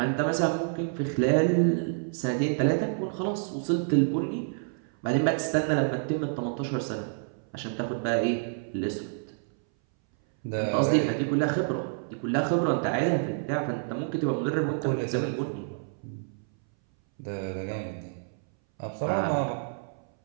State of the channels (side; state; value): left; silent; 59 dB below the other